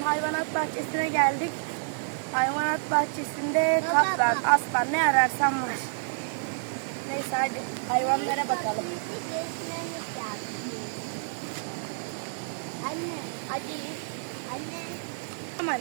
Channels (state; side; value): silent; left; 59 dB below the other